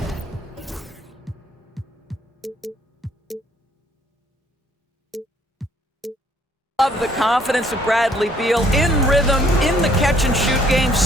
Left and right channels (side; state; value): both; normal; correlation 0.63